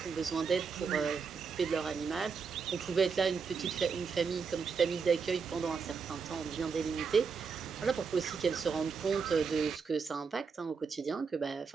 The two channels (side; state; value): left; quieter; 5.5 dB